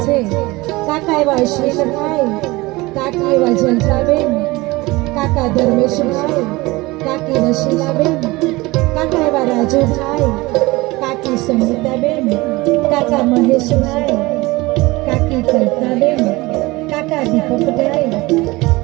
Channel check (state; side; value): quieter; left; 21.6 dB